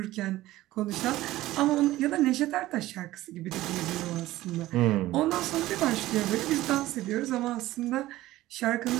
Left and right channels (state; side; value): quieter; left; 16.3 dB